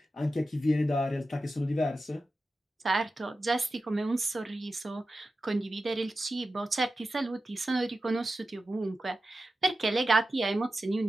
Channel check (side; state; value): both; normal; correlation 0.93